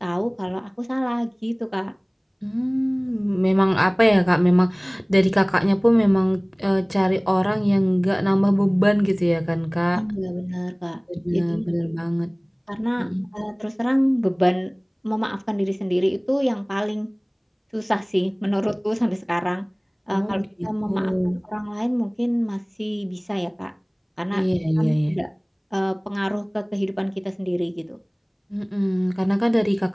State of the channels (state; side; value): identical; both; correlation 1.00